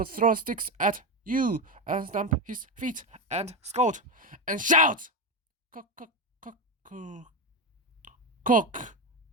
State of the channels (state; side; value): normal; both; correlation 0.14